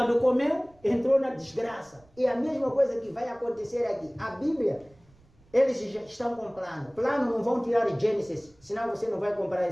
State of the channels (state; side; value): noise; right; rumble, 30 dB below the sound